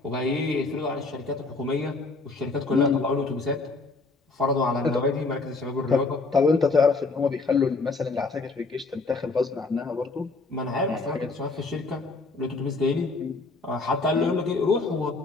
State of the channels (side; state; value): right; quieter; 3.7 dB